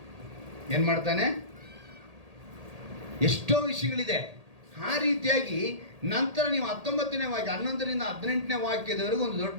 ಏನು ಮಾಡ್ತಾನೆ? ಎಷ್ಟೋ ವಿಷಯಗಳಿದೆ. ಆ ರೀತಿಯಾಗಿ ನಂತರ ನೀವು 19ನೇ ವಾಕ್ಯ 11ರಿಂದ 18ನೇ ವಾಕ್ಯದವರೆಗೂ ಒಂದು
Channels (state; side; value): late; left; 1.8 ms